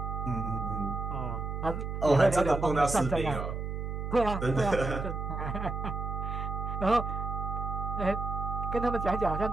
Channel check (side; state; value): right; noise; hum, 4 dB below the sound